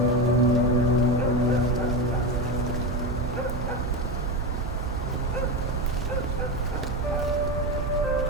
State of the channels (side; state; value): both; normal; correlation 0.18